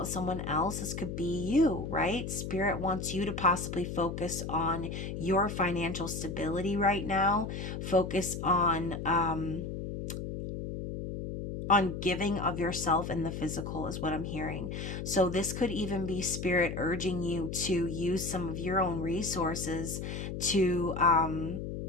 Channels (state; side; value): noise; left; hum, 5 dB below the sound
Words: someone else, this could be you, right? Spirit wants you to possibly focus on your financial stability right now. Focus on giving of yourself in the physical is what I'm hearing. So this could even be Spirit urging you to use some of your own resources to